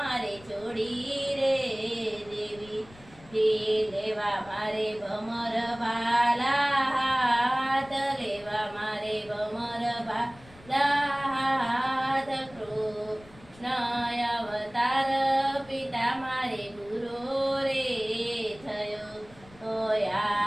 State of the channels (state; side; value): noise; left; rumble, 23 dB below the sound